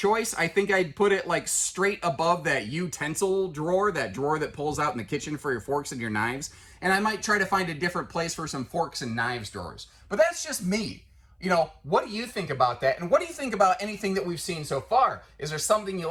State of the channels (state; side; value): identical; both; correlation 1.00